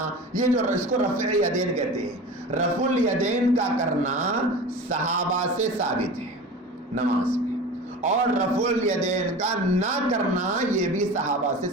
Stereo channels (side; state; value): both; normal; correlation 0.34